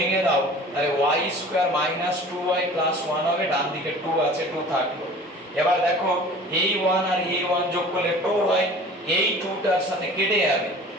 দাও তাহলে y² - 2y + 1 হবে, ডান দিকে 2 আছে, 2 থাকলো। এবার দেখো এই 1 আর এই 1 যোগ করলে 2 হয়, এই 2টার সাথে কেটে যাবে।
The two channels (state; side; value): normal; both; correlation 0.44